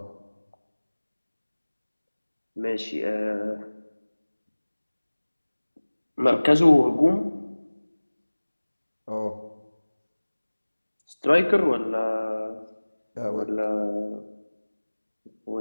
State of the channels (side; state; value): both; inverted; correlation -1.00